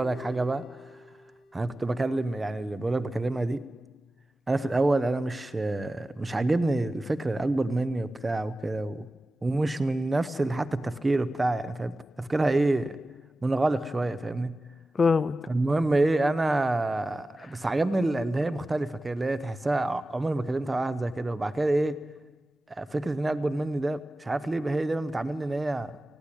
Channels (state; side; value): normal; both; correlation 0.95